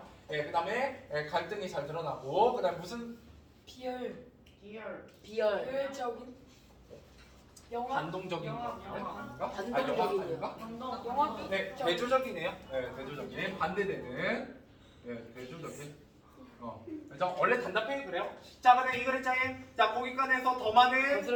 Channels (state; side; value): identical; both; correlation 1.00